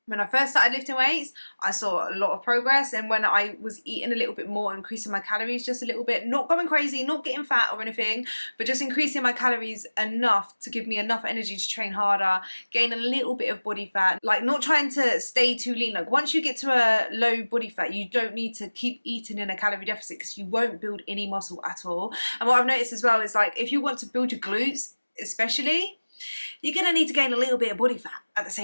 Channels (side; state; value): both; inverted; correlation -1.00